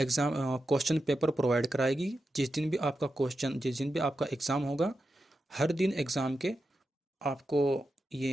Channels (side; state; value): both; normal; correlation 0.89